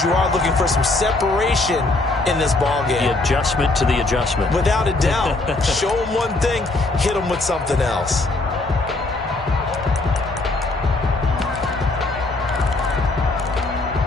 you are looking for some separation in this ballgame. The adjustment to the adjustment. Without a doubt. Show them one thing, hit them with something else.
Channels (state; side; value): quieter; right; 3.0 dB